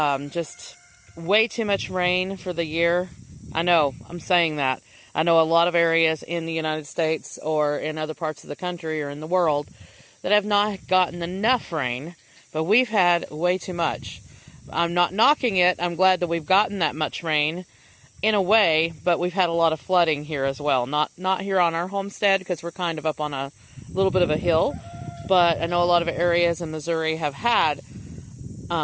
way too much rain for the year. I know, I'm saying that. I know a lot of areas in the United States or in other parts of the country or in the world that have not gotten enough rain, but we've had way too much. I'm not knocking it. I'm glad that we've gotten that much rain in a way, but we've had a lot of flooding here as well. Not here on our homestead because we're kind of up on a little bit of a hill, but I know a lot of areas in Missouri have had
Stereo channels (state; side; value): identical; both; correlation 1.00